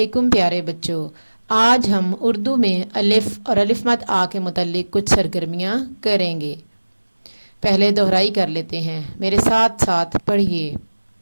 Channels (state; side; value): inverted; both; correlation -1.00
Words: پیارے بچوں، آج ہم اردو میں الف اور الف مد آ کے متعلق کچھ سرگرمیاں کریں گے۔ پہلے دہرائی کر لیتے ہیں، میرے ساتھ ساتھ پڑھیے۔